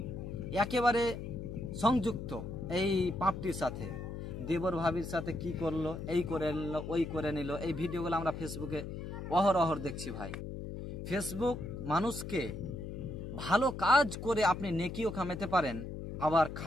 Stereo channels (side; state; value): left; noise; hum, 7 dB below the sound